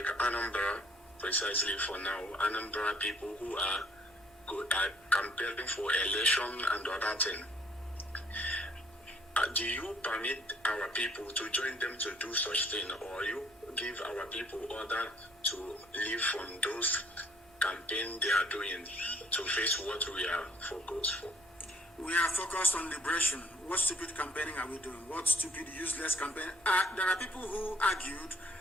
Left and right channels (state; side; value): normal; both; correlation 0.61